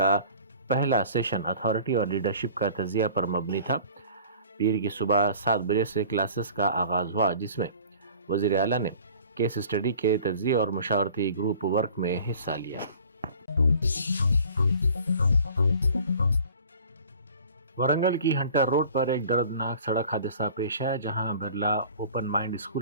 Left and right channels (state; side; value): inverted; both; correlation -0.47